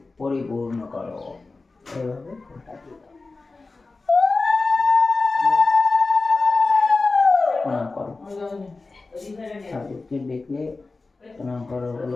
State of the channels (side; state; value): right; quieter; 3.7 dB